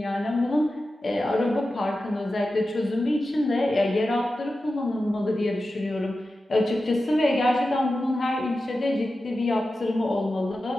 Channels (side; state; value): both; normal; correlation 0.93